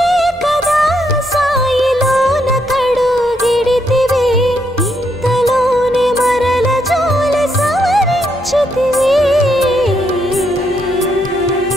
కదా సాయిలోన కడుగిడితివి ఇంతలోనే మరల జోలి సవరించితివి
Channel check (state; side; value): normal; both; correlation 0.77